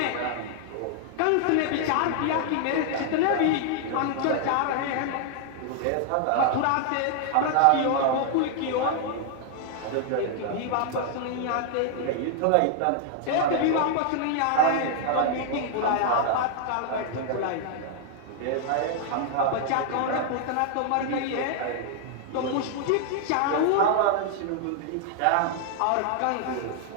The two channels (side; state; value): both; different; correlation 0.00